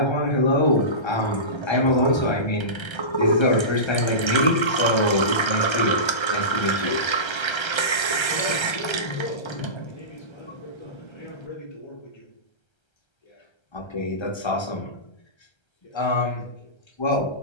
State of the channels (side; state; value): right; late; 1.3 ms